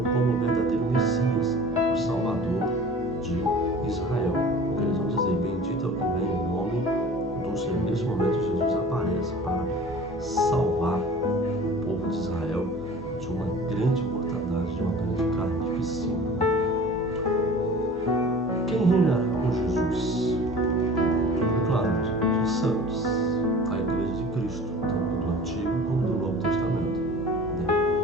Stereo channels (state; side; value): normal; both; correlation 0.42